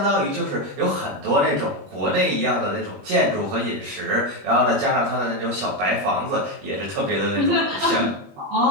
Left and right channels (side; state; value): left; late; 21 ms